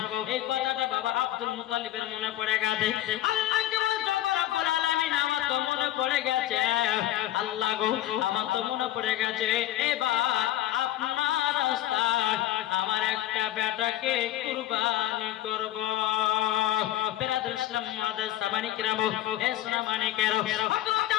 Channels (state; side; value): quieter; right; 13.6 dB